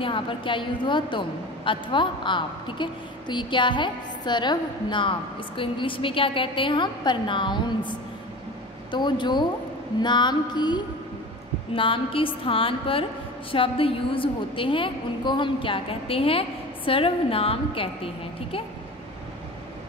यहाँ पर क्या यूज़ हुआ, तुम अथवा आप। ठीक है, तो ये क्या है, सर्वनाम। इसको इंग्लिश में क्या कहते हैं हम, प्रनाउंस। तो जो नाम के स्थान पर शब्द यूज होते हैं उनको हम क्या कहते हैं, सर्वनाम कहते हैं। ठीक है,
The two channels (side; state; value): both; normal; correlation 0.35